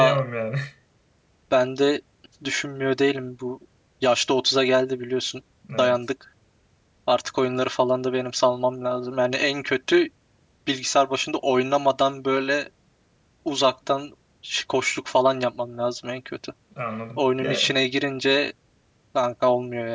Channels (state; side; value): identical; both; correlation 1.00